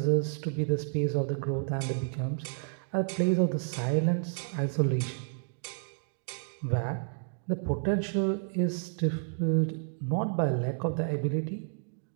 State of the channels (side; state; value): left; silent; digital silence